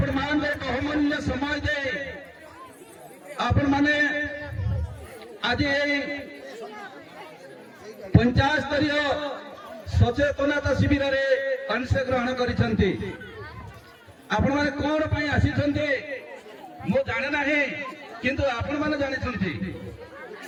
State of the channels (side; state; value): both; identical; correlation 1.00